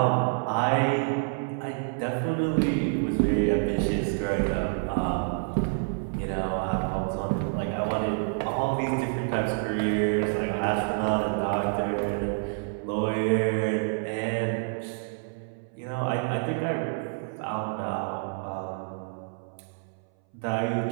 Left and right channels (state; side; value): silent; left; 59 dB below the other